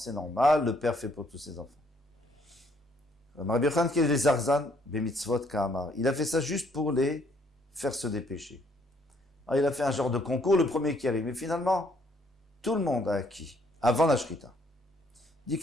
normal, le père fait pour tous ses enfants. Rabbi Yochanan, qui est les Zarzan, Bemitzvot Ka'amar. Il a fait ça juste pour les faire se dépêcher. Alors, il a fait un genre de concours, le premier qui arrive. Mais finalement, tout le monde a acquis, avant la Shrita. Dit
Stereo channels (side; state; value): both; normal; correlation 0.67